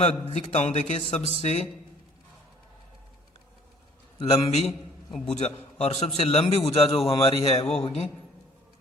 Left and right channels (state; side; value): normal; both; correlation 0.56